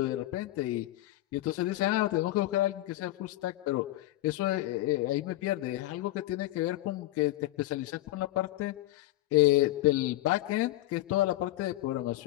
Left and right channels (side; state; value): right; quieter; 16.4 dB